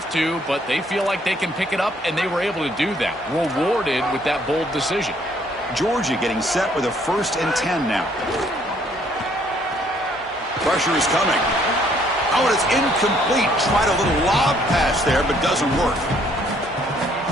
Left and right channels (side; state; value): both; normal; correlation 0.65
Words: to, but they feel like they can pick it up, and they were able to do that. Rewarded with that bold decision. Georgia getting set with a 1st and 10 now. Pressure is coming. Oh, and it's incomplete. Tried a little lob pass there, but doesn't work.